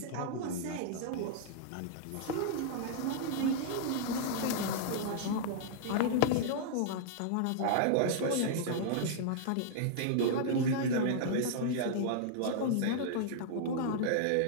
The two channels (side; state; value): both; different; correlation -0.01